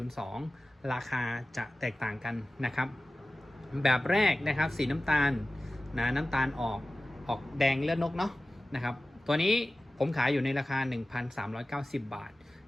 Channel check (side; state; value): both; normal; correlation 0.96